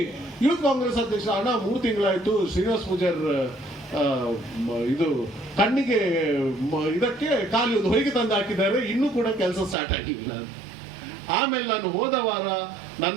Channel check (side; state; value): left; drops out; at 9.8 s